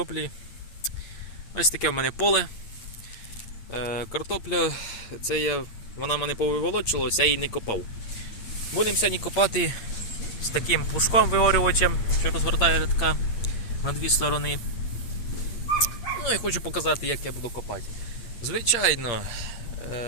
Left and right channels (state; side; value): late; right; 8.8 ms